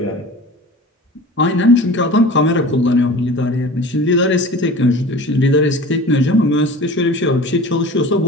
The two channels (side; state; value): both; normal; correlation 0.38